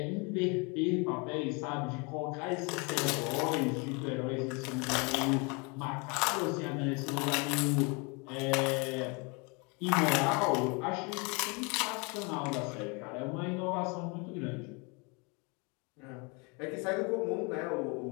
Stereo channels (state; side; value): quieter; right; 30.7 dB